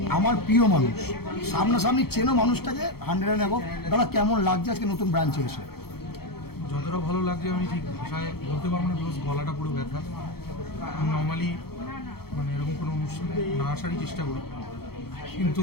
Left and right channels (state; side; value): late; right; 0.95 ms